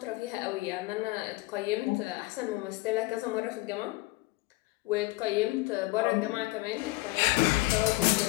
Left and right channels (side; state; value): right; quieter; 20.7 dB